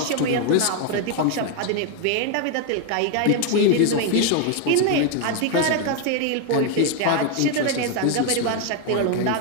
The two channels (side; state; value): both; different; correlation 0.01